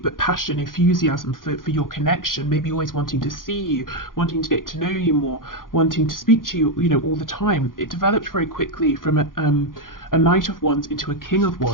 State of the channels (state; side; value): late; right; 0.90 ms